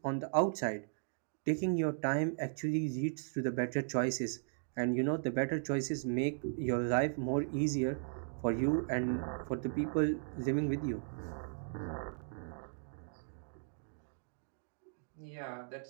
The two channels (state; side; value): silent; left; digital silence